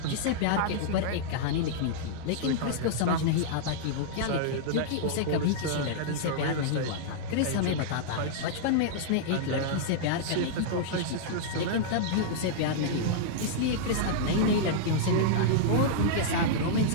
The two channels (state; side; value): different; both; correlation -0.02